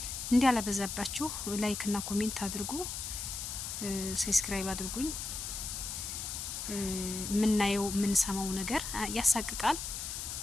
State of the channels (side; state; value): left; noise; hiss, 5 dB below the sound